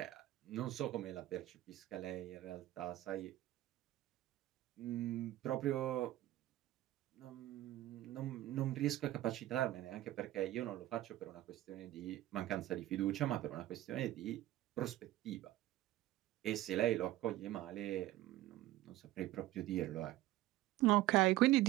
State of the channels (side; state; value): left; quieter; 15.6 dB